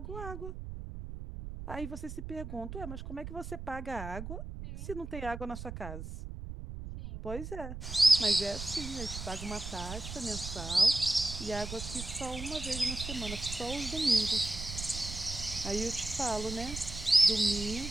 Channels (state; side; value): noise; right; rumble, 8 dB below the sound